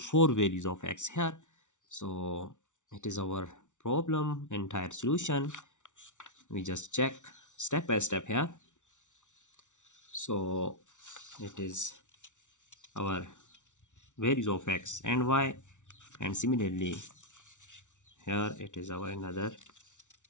four values of x here. So it is our problem entire solution. We just check step by step here. So it is our values of x and y, and similarly here it is our another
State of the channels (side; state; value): right; late; 0.86 ms